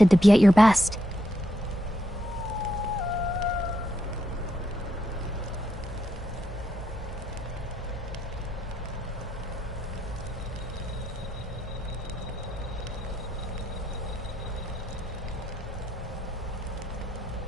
to be at your best.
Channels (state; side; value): normal; both; correlation 0.80